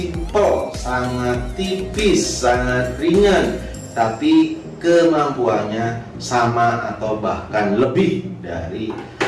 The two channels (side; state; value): both; identical; correlation 1.00